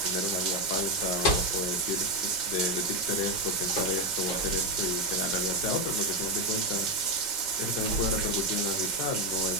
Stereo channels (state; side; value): late; right; 5.3 ms